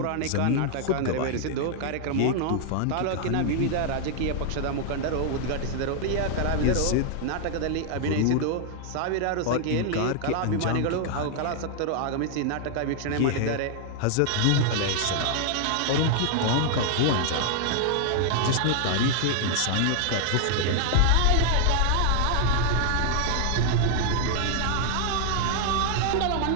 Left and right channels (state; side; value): different; both; correlation 0.00